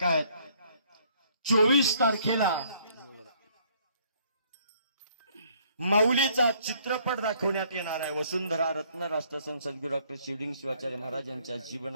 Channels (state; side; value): inverted; both; correlation -0.63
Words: आहेत. 24 तारखेला माऊलीचा चित्रपट दाखवण्यात येणार आहे. वसुंधरा रत्न राष्ट्रसंत सद्गुरू डॉक्टर शिवलिंग शिवाचार्य महाराज यांच्या